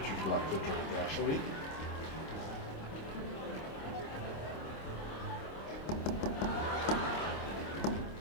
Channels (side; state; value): right; late; 26 ms